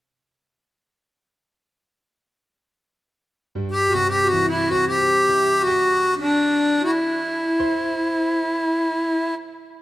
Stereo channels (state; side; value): normal; both; correlation 0.95